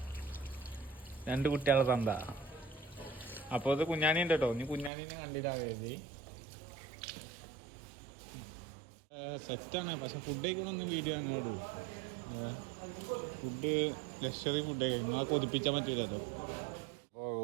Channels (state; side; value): drops out; left; at 4.9 s